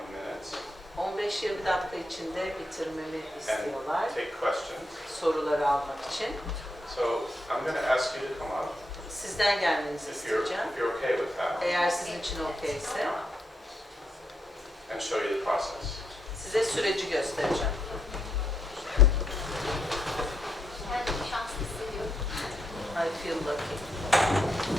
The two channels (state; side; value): normal; both; correlation 0.79